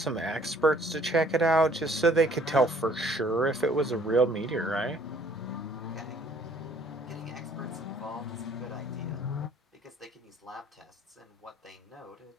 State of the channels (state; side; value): normal; both; correlation 0.59